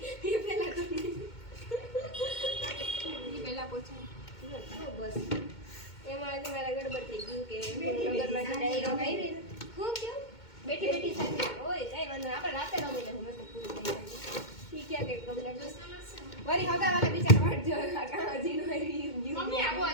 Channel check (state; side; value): late; right; 2.2 ms